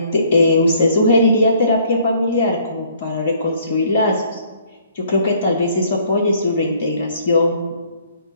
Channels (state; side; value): inverted; both; correlation -0.61